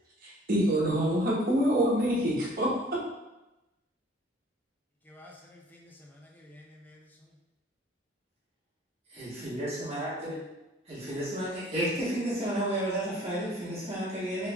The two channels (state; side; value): normal; both; correlation 0.54